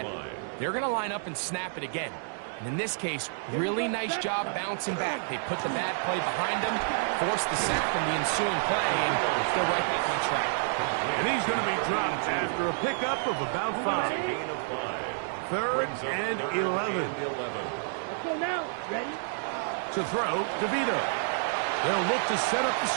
they're going to line up and snap it again. And in this case, really nice job bouncing back. They put the bad play behind them, forced the sack from the ensuing play, and they're right back on track. And he's going to be dropped after a pickup of about 5. 3rd and 11. Let's go now. Ready? To throw, DeVito. They'll look to set up the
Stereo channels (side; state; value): left; silent; digital silence